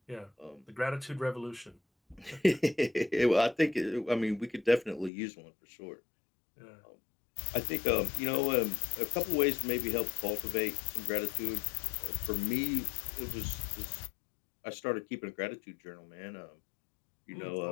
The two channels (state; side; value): drops out; right; at 5.1 s